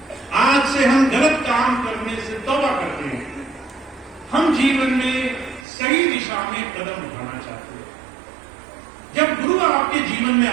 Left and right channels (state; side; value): drops out; left; at 5.7 s